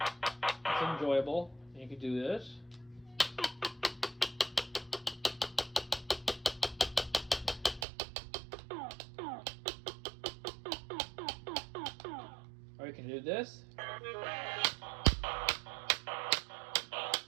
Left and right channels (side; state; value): left; drops out; at 7.9 s